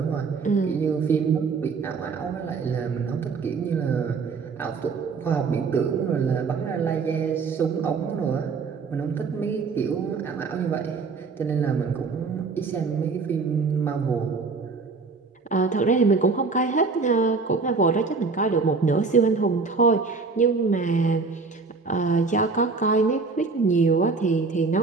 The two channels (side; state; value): left; quieter; 4.6 dB